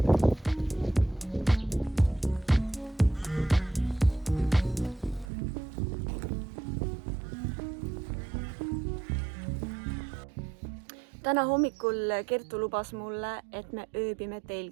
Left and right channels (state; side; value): drops out; left; at 5.2 s